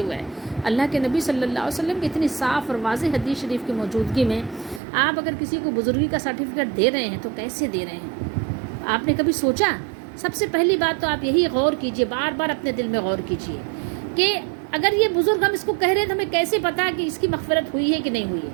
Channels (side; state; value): left; drops out; at 4.8 s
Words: ہے؟ اللہ کے نبی صلی اللہ علیہ وسلم کی اتنی صاف اور واضح حدیث شریف کی موجودگی میں آپ اگر کسی کو بزرگی کا سرٹیفکیٹ دے رہے ہیں تو کیسے دے رہے ہیں؟ آپ نے کبھی سوچا؟ سب سے پہلی بات تو آپ یہی غور کیجئے، بار بار اپنے دل میں غور کیجئے کہ اگر یہ بزرگ ہم اس کو کہہ رہے ہیں تو ہمیں کیسے پتا کہ اس کی مغفرت ہوئی ہے کہ نہیں ہوئی ہے؟